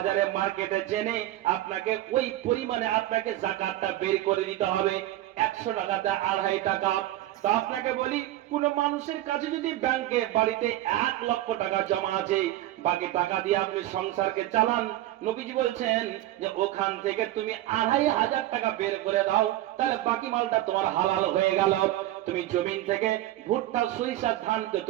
মার্কেটে জেনে আপনাকে ওই পরিমাণে আপনাকে যাকাতটা বের করে দিতে হবে। 100 টাকাতে 2.5 টাকা। তো আপনাকে বলি, কোন মানুষের কাছে যদি ব্যাংকে বাড়িতে 1 লক্ষ টাকা জমা আছে, বাকি টাকা দিয়ে আপনি সংসারকে চালান, নবীজি বলছেন যে ওখান থেকে তুমি 2,500 টাকা বের করে দাও, তাহলে বাকি মালটা তোমার হালাল হয়ে গেল। তুমি জমিন থেকে ভুট্টা সরিষা ধানকে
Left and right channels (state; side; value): quieter; left; 14.9 dB